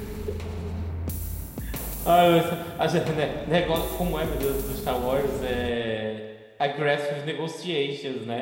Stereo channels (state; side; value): identical; both; correlation 1.00